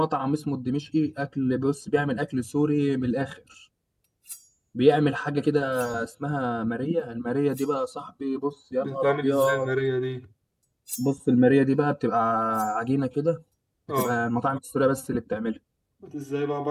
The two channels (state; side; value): identical; both; correlation 1.00